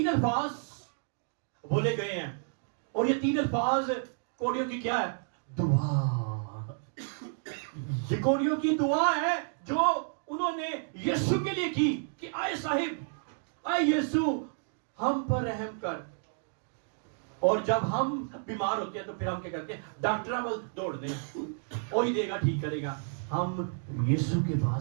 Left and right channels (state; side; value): silent; left; digital silence